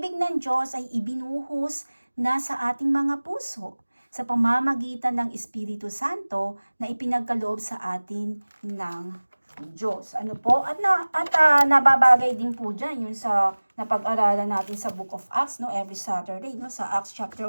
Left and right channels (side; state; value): both; inverted; correlation -1.00